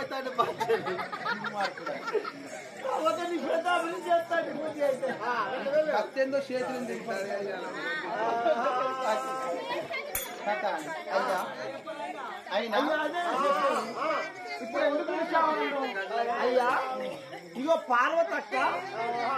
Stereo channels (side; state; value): both; identical; correlation 1.00